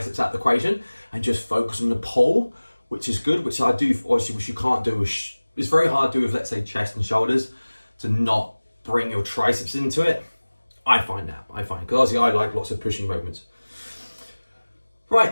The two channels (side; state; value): both; inverted; correlation -1.00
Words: out of the equation and just focus on the pull, which is good, which I do, obviously, which you can't do. It's very hard to do with, let's say, chest and shoulders, to not bring your triceps into it. I find, because obviously I like lots of pushing movements.